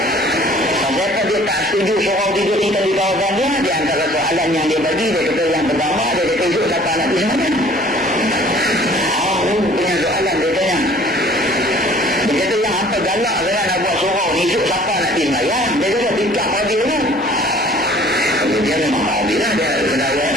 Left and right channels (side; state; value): both; normal; correlation 0.52